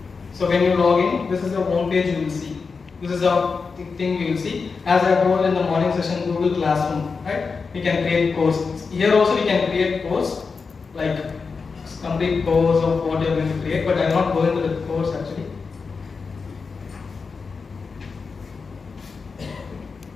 So when you log in, this is the home page you will see. This is the thing you will see. As I told in the morning session, Google Classroom, right? We can create courses. Here also we can create course, like complete course of what you are going to create, but I am not going to the course actually.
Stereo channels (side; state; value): right; quieter; 4.9 dB